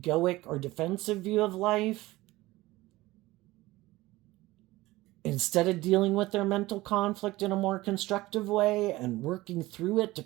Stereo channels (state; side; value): quieter; left; 18.7 dB